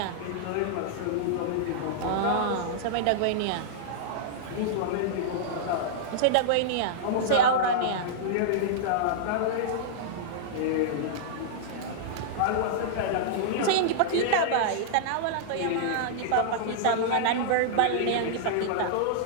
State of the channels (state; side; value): different; both; correlation -0.02